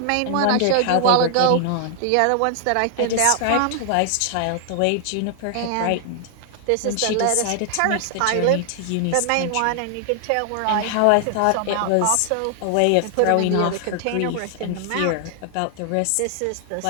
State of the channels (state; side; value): different; both; correlation 0.00